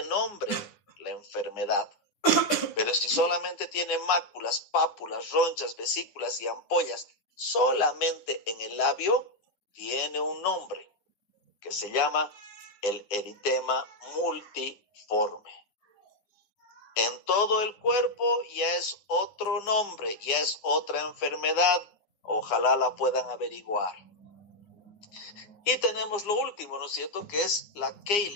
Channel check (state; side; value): late; right; 9.7 ms